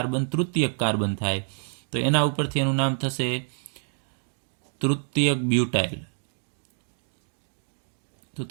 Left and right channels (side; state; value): left; silent; 60 dB below the other